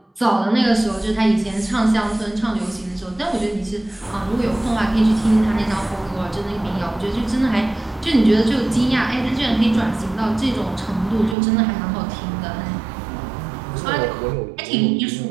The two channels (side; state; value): left; drops out; at 11.4 s